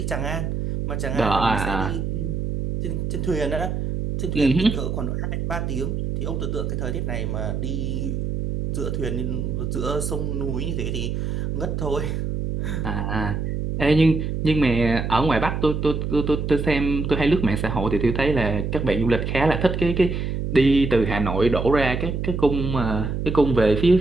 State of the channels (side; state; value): right; noise; hum, 2 dB below the sound